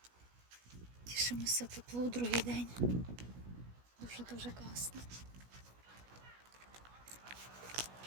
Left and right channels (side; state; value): left; late; 16 ms